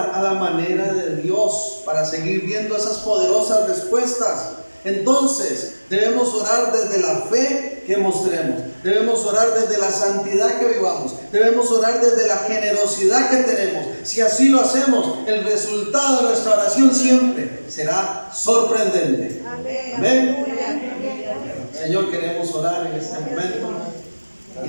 a la manera de Dios para seguir viendo esas poderosas respuestas. Entonces, debemos orar desde la fe que mostremos. Debemos orar desde la santidad que vivamos. Debemos orar desde la generosidad que tenemos. Si así lo hacemos, el resultado de nuestra oración siempre será sorprendente. Amén. Señor, queremos orar en este momento y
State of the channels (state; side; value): inverted; both; correlation -1.00